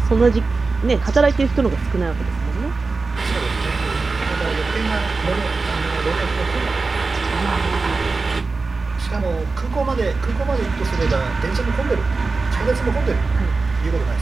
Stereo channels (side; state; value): left; quieter; 4.0 dB